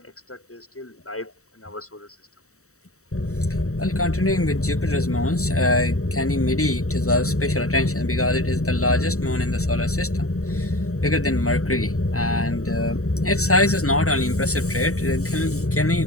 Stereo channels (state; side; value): late; right; 0.64 ms